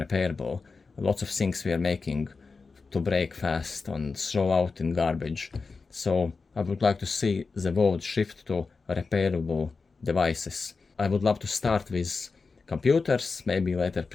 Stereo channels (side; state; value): right; quieter; 4.4 dB